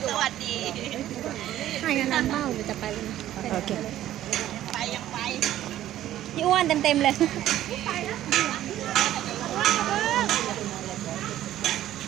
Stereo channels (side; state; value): left; quieter; 13.0 dB